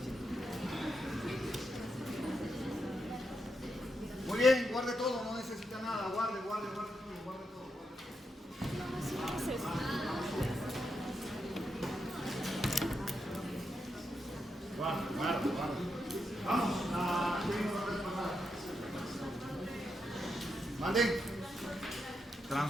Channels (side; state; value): both; normal; correlation 0.84